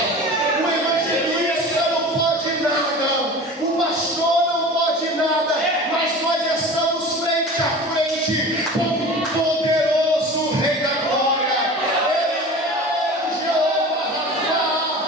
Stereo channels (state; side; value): normal; both; correlation 0.37